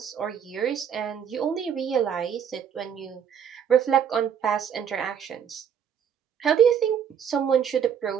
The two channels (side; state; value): left; quieter; 8.1 dB